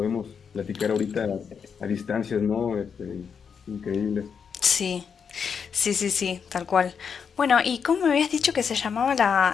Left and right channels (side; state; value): right; quieter; 6.6 dB